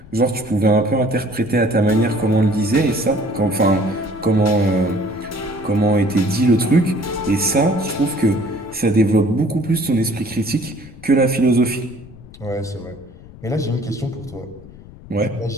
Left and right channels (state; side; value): noise; left; rumble, 19 dB below the sound